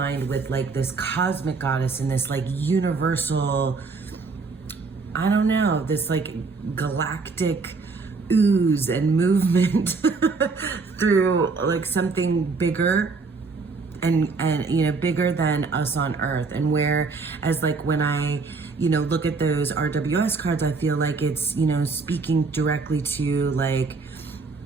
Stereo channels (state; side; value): quieter; left; 4.3 dB